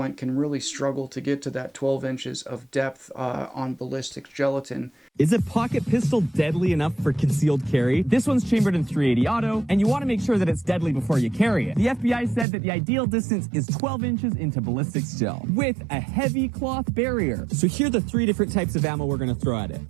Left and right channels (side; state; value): left; drops out; at 12.5 s